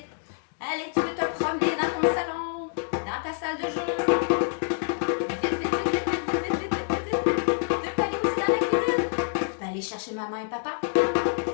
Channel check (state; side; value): silent; right; digital silence